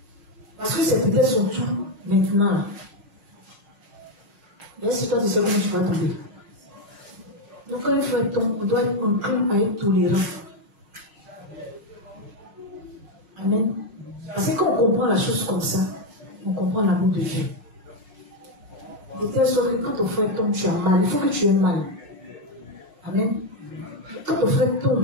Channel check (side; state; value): left; late; 5.5 ms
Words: Parce que c'est peut-être son tour maintenant. Mais si toi tu sais comment tu vas tomber. Donc quand il faut être on doit être enclin à être tolérant. Amen. Parce que quand on comprend la chose comme ça, on comprend l'amour de Dieu. De telle sorte que quand ton frère tombe, tu as mal. Il faut que tu aies mal. Amen. Quand ton frère